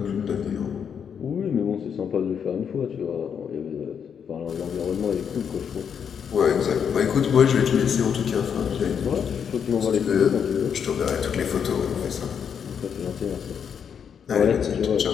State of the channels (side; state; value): right; quieter; 7.5 dB